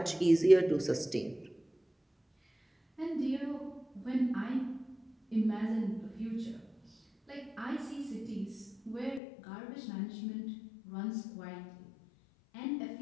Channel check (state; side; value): drops out; right; at 9.2 s